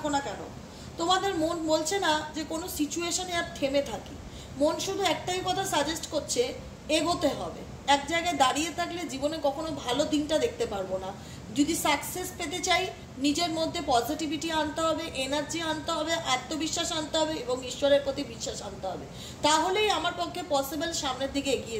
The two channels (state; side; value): identical; both; correlation 1.00